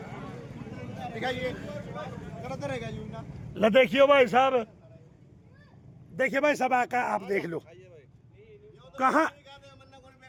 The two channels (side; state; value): both; identical; correlation 1.00